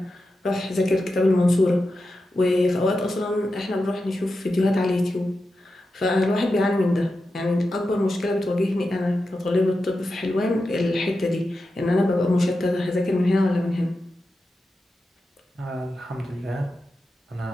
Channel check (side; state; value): both; normal; correlation 0.90